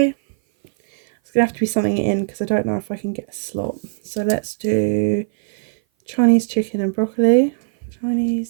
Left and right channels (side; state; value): left; silent; 57 dB below the other